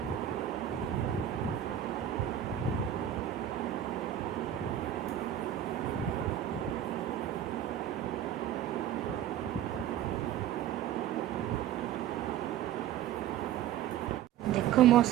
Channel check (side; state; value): left; quieter; 11.0 dB